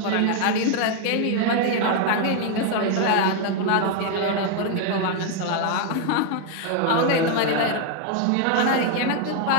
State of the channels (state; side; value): different; both; correlation 0.00